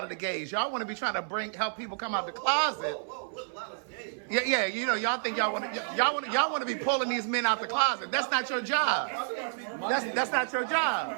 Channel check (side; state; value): left; silent; 58 dB below the other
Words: of the gays. Y'all want to be trying to help people come out the closet. Yeah. You know, y'all think y'all want to be pulling these men out the closet. That's not your job. That's not your